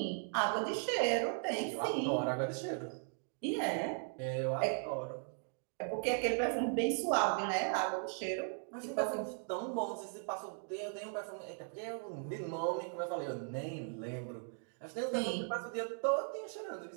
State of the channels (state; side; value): silent; left; 52 dB below the other